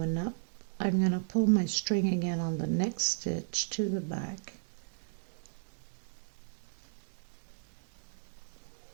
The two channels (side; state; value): left; silent; digital silence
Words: up. I'm going to pull my string again on the next stitch to the back.